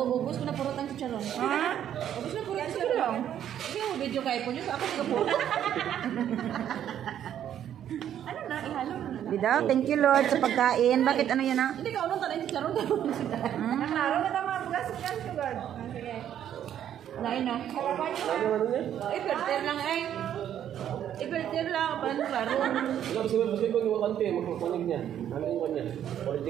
ko na purot ang chicharon. Ha? Ubus na purot ang chicharon. Sige mo video kay po niyo. Ako sige purot. Ano na? Ihalo na na. Bida, thank you Lord sa pagkain. Bakit ano yan ha? Hindi ka unong tanay chicharon. Naklaro na tama. Bugas ka sa God. Sige. Wala yun no? Harapan niyo na. Ano niya? Iperter lang eh. Iperter lang. Paano klaro? Wala, kasi ko yung kante. Magpapanig niya. Ano yung kanya?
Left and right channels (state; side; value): quieter; left; 10.3 dB